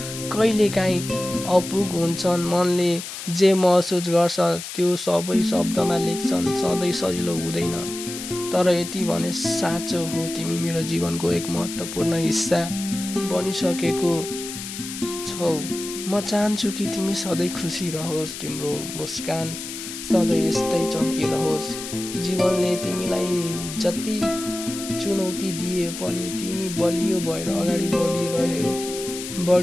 कहिलेकाहीँ अपुग हुन्छन्। मनले जे महसुस गर्छ त्यो सबै शब्दमा लेख्छन् सधैँ सजिलो हुँदैन। तर यति भने साँचो हो, तिमी मेरो जीवनको एक महत्त्वपूर्ण हिस्सा बनिसकेको छौ। म चाहन्छु कि तिमी सधैँ खुसी रहोस्, तिम्रो मुस्कान सधैँ यस्तै चम्किरहोस्। जीवनले तिमीलाई जति चुनौती दिए पनि तिमी बलियो भएर अगाडि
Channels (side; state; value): left; noise; hiss, 9 dB below the sound